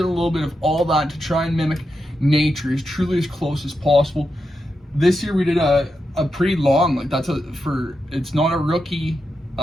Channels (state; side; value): normal; both; correlation 0.87